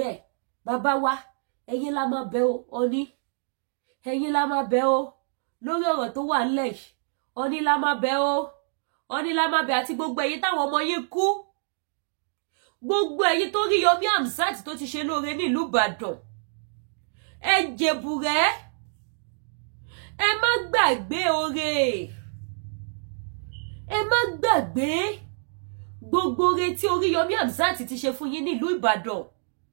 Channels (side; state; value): left; silent; digital silence